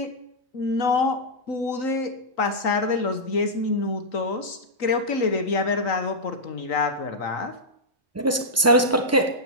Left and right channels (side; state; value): both; normal; correlation -0.08